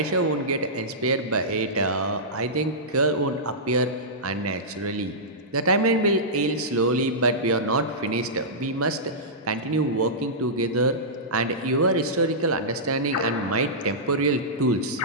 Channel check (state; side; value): normal; both; correlation -0.15